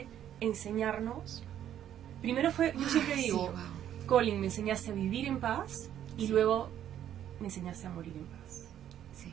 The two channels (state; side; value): quieter; left; 10.7 dB